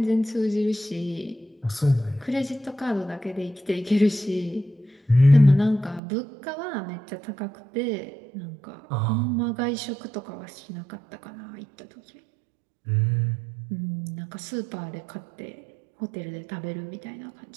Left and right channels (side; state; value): left; drops out; at 6.0 s